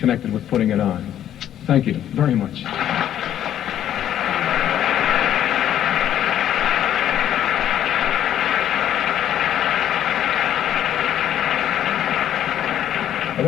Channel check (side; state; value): right; quieter; 11.0 dB